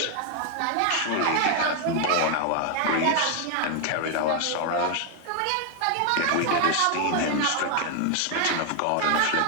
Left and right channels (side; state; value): both; different; correlation 0.01